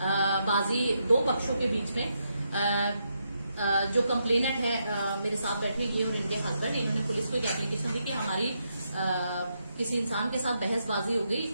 बाजी दो पक्षों के बीच में जो कंप्लेनेंट है मेरे साथ बैठे ये और इनके हस्बैंड, इन्होंने पुलिस को एक एप्लीकेशन दी कि हमारी किसी इंसान के साथ बहसबाजी हो गई।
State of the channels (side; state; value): both; inverted; correlation -0.81